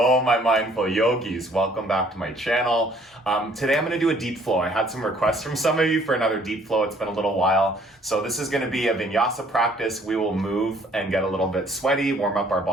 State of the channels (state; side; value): normal; both; correlation 0.60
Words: my mindful yogis. Welcome back to my channel. Today I'm going to do a deep flow. I had some requests from some of you for another deep flow. It's been a little while. So this is going to be a Vinyasa practice. We will move and get a little bit sweaty, warm up our